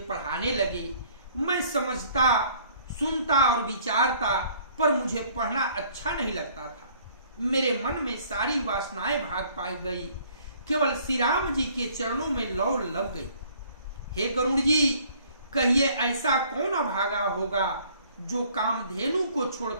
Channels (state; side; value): inverted; both; correlation -0.58